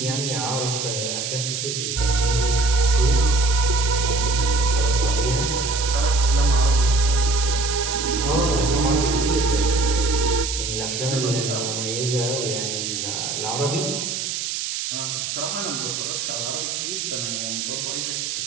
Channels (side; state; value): right; noise; hiss, 3 dB below the sound